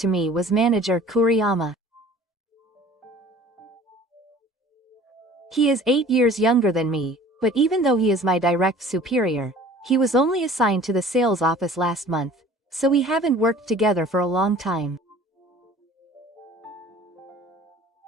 me was Manager Kuriyama. He is 8 years younger than me, but even though he is my direct superior, he was only assigned to the sales office last month, so we haven't worked together for a long time.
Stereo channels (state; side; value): normal; both; correlation 0.48